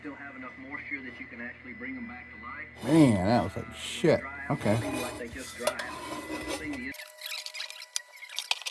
still have enough moisture that you can actually bring them back to life. Man, that was like shit. Okay.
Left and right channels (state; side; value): identical; both; correlation 1.00